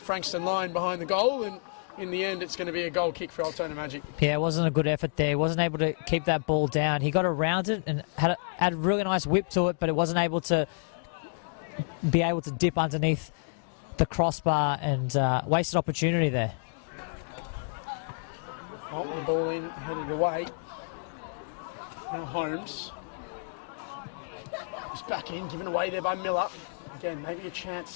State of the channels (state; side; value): silent; right; digital silence